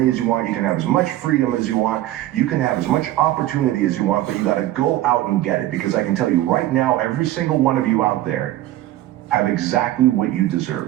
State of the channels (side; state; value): left; quieter; 14.8 dB